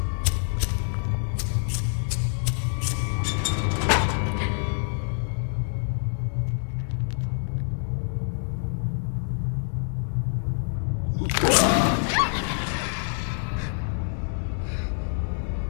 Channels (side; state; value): right; silent; digital silence